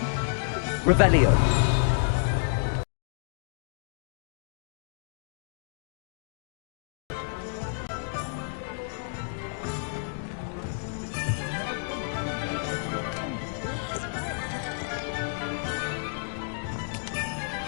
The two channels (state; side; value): silent; right; digital silence